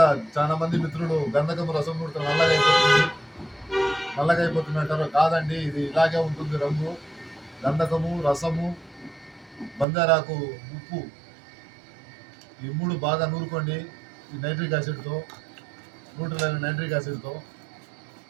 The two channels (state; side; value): drops out; left; at 9.9 s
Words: చాలా మంది మిత్రులు గంధకము రసం నూడితే నల్లగా అయిపోతుంది అంటారు. కాదండి, ఇది ఇలాగే ఉంటుంది రంగు. గంధకము, రసము, బంగారాకు, ఉప్పు ఈ 3 బాగా నూరుకోండి. ఈ నైట్రిక్ యాసిడ్తో, న్యూట్రల్ అయిన నైట్రిక్ యాసిడ్తో.